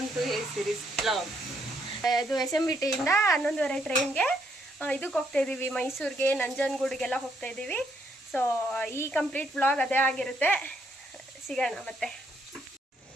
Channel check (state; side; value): normal; both; correlation 0.73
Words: to a series vlog. ಇದು SMBT ಇಂದ 11:30 ಟ್ರೈನ್ಗೆ ಇದಕ್ಕೆ ಹೋಗ್ತಾ ಇದೀವಿ, ಮೈಸೂರಿಗೆ, ನಂಜನಗೂಡಿಗೆಲ್ಲ ಹೋಗ್ತಾ ಇದೀವಿ. ಸೊ ಈ ಕಂಪ್ಲೀಟ್ ವ್ಲಾಗ್ ಅದೇ ಆಗಿರುತ್ತೆ. ಸಿಗೋಣ ಮತ್ತೆ.